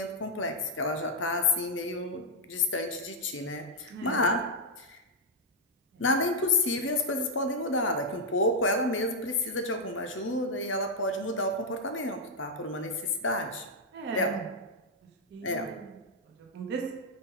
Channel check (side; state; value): both; normal; correlation -0.03